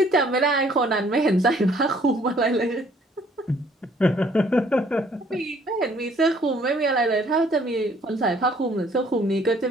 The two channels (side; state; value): both; normal; correlation 0.61